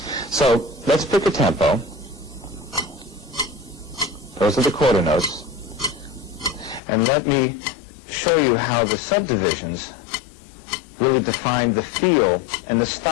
So let's pick a tempo. Those are the quarter notes. And let me show you how the subdivisions really define the feel and the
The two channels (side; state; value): right; drops out; at 6.8 s